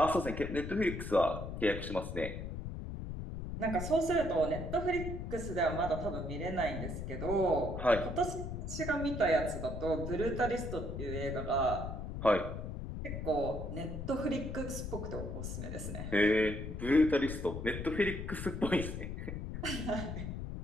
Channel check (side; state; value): left; noise; rumble, 6 dB below the sound